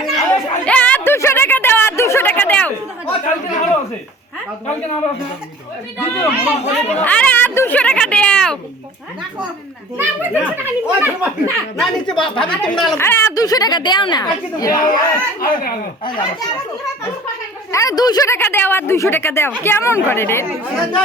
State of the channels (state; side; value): normal; both; correlation 0.46